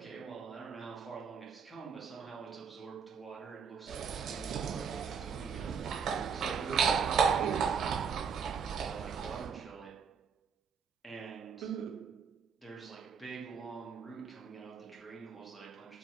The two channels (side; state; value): left; quieter; 6.3 dB